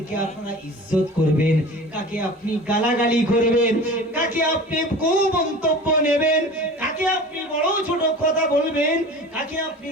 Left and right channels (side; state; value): both; normal; correlation 0.38